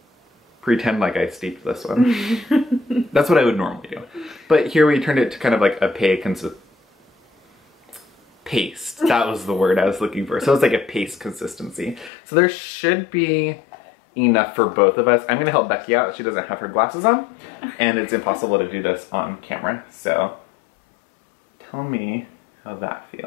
Pretend like I steeped this one. That's what I would normally do. But here we turned it to kind of like a paste. That was the word I was looking for. So it's like a paste consistency. So there should be enough for both of us. I'm gonna help Becky out. She doesn't have her glasses on, and it's impossible to do this on camera. So tell me how that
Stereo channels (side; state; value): right; drops out; at 12.1 s